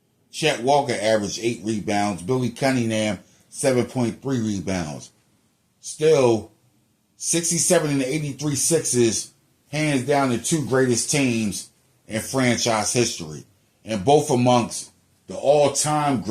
Chet Walker averaged 8 rebounds. Billy Cunningham, 7.3 rebounds. Still, 67 and 83 Sixers, hands down the 2 greatest teams in franchise history, and both amongst the all-time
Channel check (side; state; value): both; identical; correlation 1.00